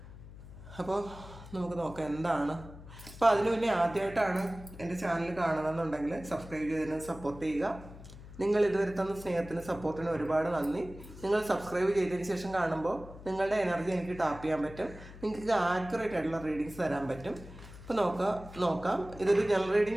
അപ്പോൾ നമുക്ക് നോക്കാം എന്താണ്. അപ്പോൾ അതിന് മുന്നേ ആദ്യമായിട്ടാണ് എൻ്റെ ചാനൽ കാണുന്നതെന്നുണ്ടെങ്കിൽ സബ്സ്ക്രൈബ് ചെയ്തതിന് സപ്പോർട്ട് ചെയ്യുക. നിങ്ങൾ ഇതുവരെ തന്ന സ്നേഹത്തിന് സപ്പോർട്ടിന് ഒരുപാട് നന്ദി. നിങ്ങൾ സബ്സ്ക്രൈബ് ചെയ്തതിന് ശേഷം കാണുമ്പോൾ നിങ്ങളുടെ എനർജി എനിക്ക് ടാപ്പ് ചെയ്യാൻ പറ്റും, നിങ്ങൾക്ക് ആക്യുറേറ്റ് ആയിട്ടുള്ള റീഡിങ്സ് തരാൻ പറ്റും. ഇപ്പോൾ നോക്കാം. ഇതൊരു ജനറൽ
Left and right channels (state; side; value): noise; left; hum, 16 dB below the sound